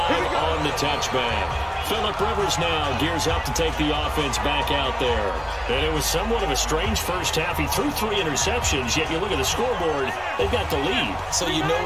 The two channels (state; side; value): identical; both; correlation 1.00